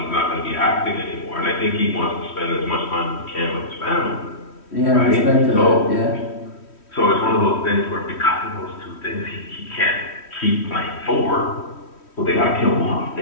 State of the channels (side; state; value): right; late; 3.1 ms